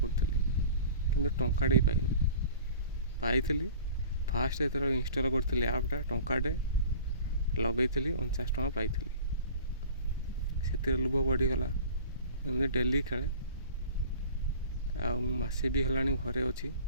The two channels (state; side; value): inverted; both; correlation -0.42